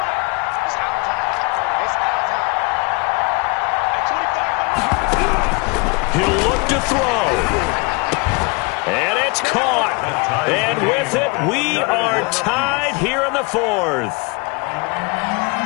He'll look to throw. And it's caught. And with it, we are tied here in the fourth.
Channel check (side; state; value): right; quieter; 29.7 dB